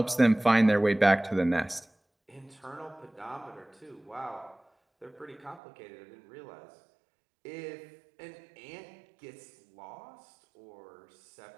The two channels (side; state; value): left; drops out; at 5.6 s